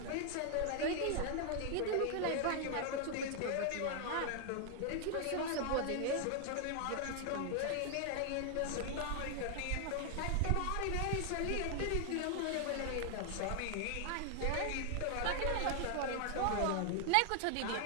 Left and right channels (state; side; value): different; both; correlation 0.00